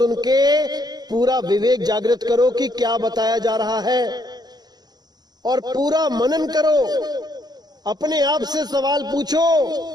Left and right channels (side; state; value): left; late; 0.20 ms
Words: के पूरा विवेक जागृत करो कि क्या बताया जा रहा है, और पूरा मनन करो। अपने आप से सवाल पूछो